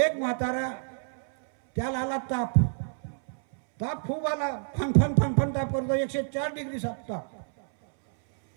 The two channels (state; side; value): silent; left; 59 dB below the other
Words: म्हातारा त्याला आला ताप खूप आला, फन ताप करतो, 104 डिग्री ताप